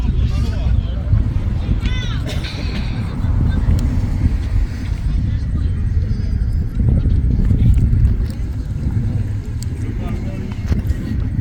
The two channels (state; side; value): identical; both; correlation 1.00